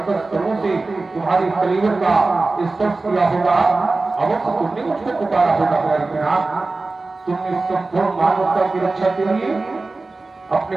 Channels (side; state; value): left; quieter; 3.5 dB